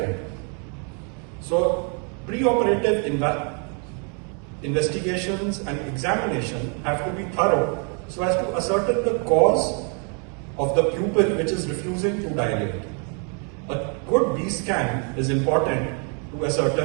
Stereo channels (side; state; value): left; quieter; 38.9 dB